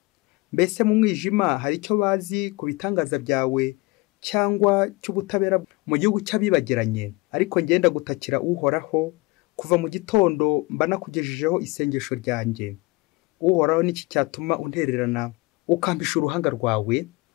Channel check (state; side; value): quieter; right; 24.0 dB